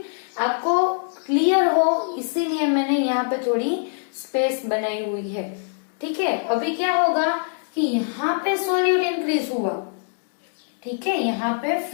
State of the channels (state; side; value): silent; right; digital silence